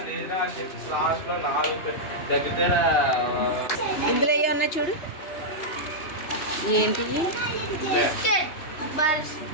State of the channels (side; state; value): right; late; 3.1 ms